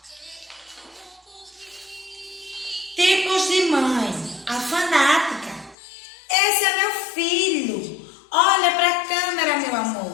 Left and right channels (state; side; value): drops out; right; at 5.8 s